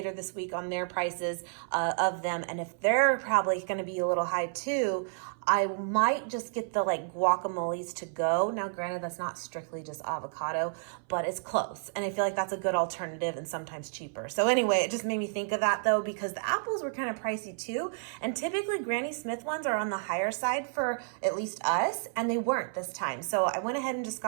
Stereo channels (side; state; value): left; silent; 57 dB below the other